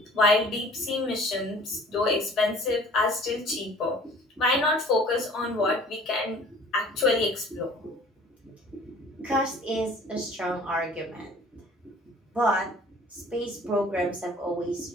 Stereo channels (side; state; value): both; normal; correlation 0.49